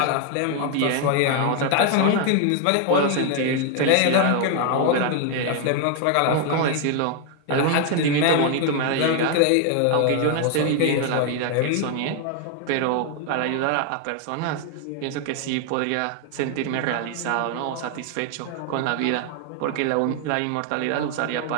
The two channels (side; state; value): both; different; correlation 0.00